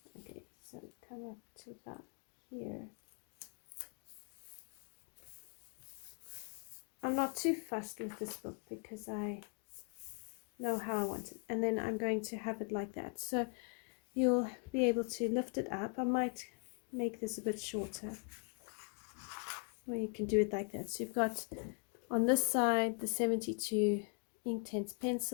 Okay, so come up to about here. I'm not too fussed with this book because I know how I want it. And then I'm going to have it like that. So you'll be able to lift it up. I might make this a bit shorter. Or you can do it like that. So you've got on this side the 72 Inktense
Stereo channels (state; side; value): quieter; right; 37.8 dB